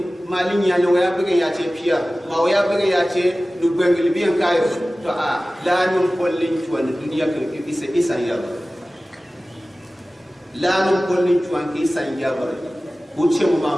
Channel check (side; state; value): both; normal; correlation 0.97